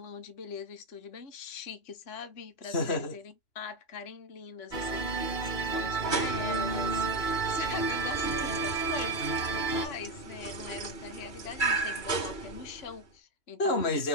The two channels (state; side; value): late; right; 2.9 ms